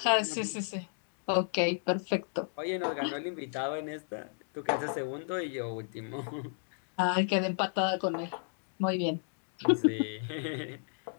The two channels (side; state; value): right; silent; digital silence